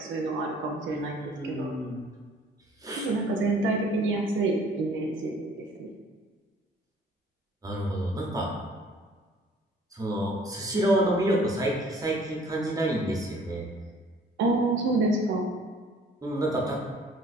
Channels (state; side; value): normal; both; correlation 0.55